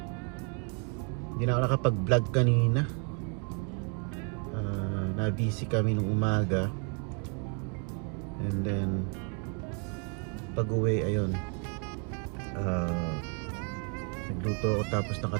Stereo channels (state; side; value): quieter; left; 38.3 dB